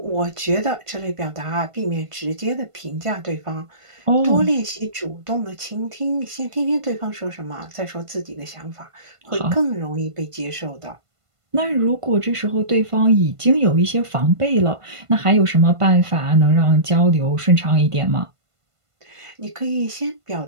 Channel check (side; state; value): left; late; 1.5 ms